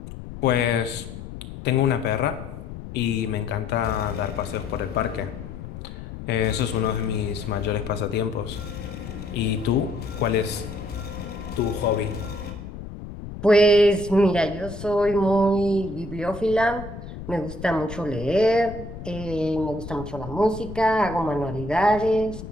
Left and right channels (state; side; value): noise; left; rumble, 11 dB below the sound